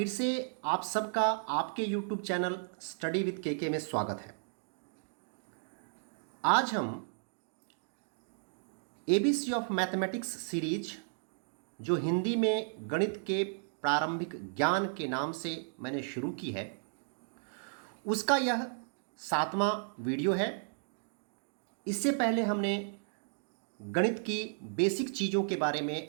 से आप सबका आपके YouTube channel study with KK में स्वागत है। आज हम एबीसी ऑफ मैथमेटिक्स सीरीज जो हिंदी में गणित के प्रारंभिक ज्ञान के नाम से मैंने शुरू की है, उसका यह 7वां वीडियो है। इससे पहले हमने गणित की बेसिक चीज़ों के बारे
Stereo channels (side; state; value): left; silent; digital silence